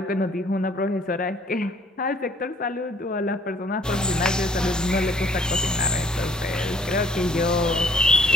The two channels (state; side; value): normal; both; correlation 0.61